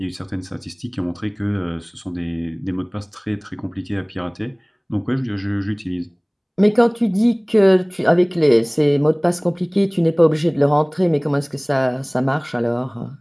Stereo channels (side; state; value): both; identical; correlation 1.00